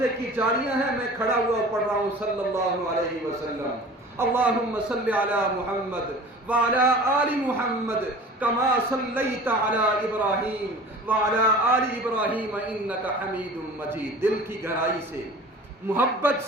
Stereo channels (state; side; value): normal; both; correlation 0.41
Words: کی جاریاں ہیں، میں کھڑا ہوا پڑھ رہا ہوں صلی اللہ علیہ وسلم۔ اللہم صلی علی محمد وعلی آل محمد کما صلیت علی ابراہیم وعلی آل ابراہیم انک حمید مجید۔ دل کی گہرائی سے، محبت